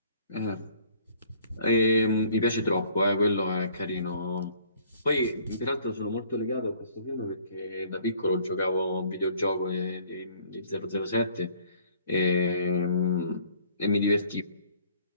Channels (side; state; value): both; inverted; correlation -0.57